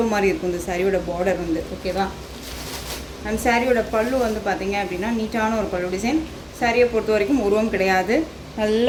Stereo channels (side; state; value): both; identical; correlation 1.00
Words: மாதிரி இருக்கும் இந்த சாரியோட பார்டர் வந்து. ஓகேவா, அண்ட் சாரியோட பல்லு வந்து பார்த்திங்க அப்படின்னா நீட்டான ஒரு பல்லு டிசைன். சாரியை பொறுத்த வரைக்கும் உருவம் கிடையாது, நல்ல